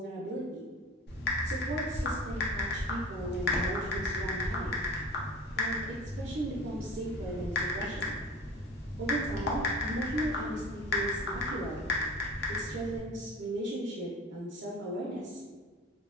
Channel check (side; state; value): both; normal; correlation 0.38